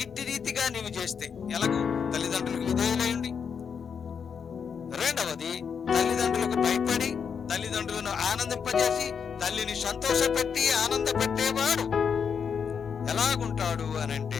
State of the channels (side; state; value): right; quieter; 6.7 dB